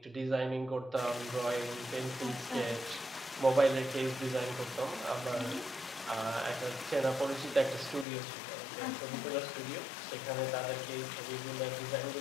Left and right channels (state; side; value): drops out; right; at 8.1 s